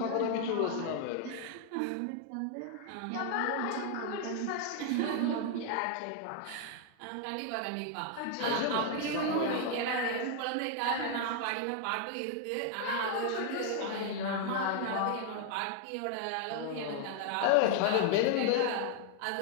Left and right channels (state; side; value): different; both; correlation 0.00